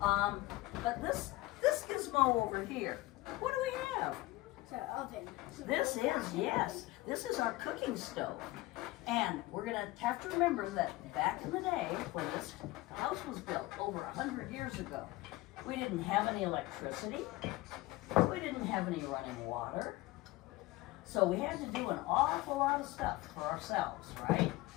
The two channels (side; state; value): right; quieter; 19.1 dB